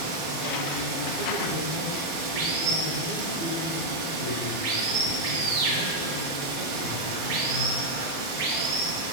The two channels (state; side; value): late; right; 12 ms